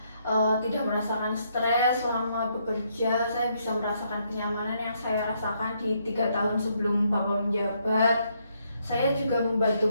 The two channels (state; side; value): inverted; both; correlation -0.74